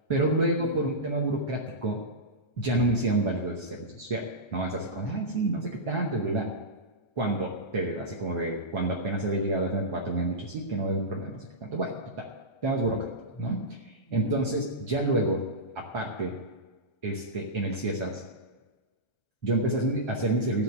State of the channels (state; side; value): late; right; 1.3 ms